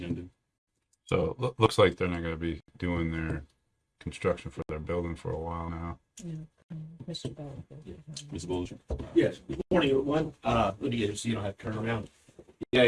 So it looks like they're not going to be doing their construction for their building for a while now. Mr. Bell. Ms. Bolger? Yes, good morning, everyone. Let me get it so you don't have to turn around. Yeah,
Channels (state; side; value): identical; both; correlation 1.00